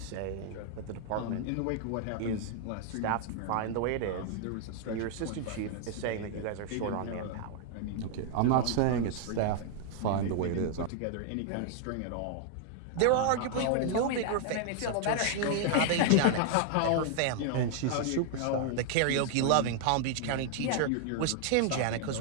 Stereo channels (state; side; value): different; both; correlation 0.00